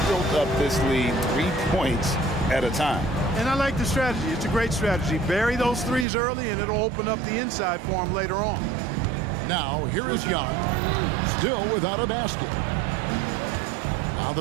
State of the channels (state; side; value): drops out; left; at 6.1 s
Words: built up this lead 3 points at a time. And I like the strategy. It's a great strategy. Bury those threes early, and it'll open up the inside for him later on. Now, here is Young, still without a basket. Now